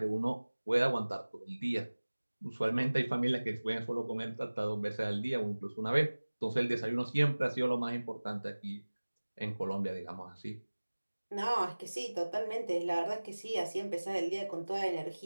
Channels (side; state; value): both; inverted; correlation -1.00